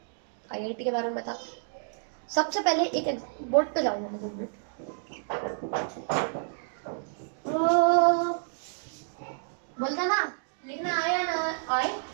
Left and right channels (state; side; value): silent; left; digital silence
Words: आईआईटी के बारे में बता, सबसे पहले एक बोर्ड पे जाऊंगा मैं 2 मिनट। बोलते ना, लिखना आए या ना आए,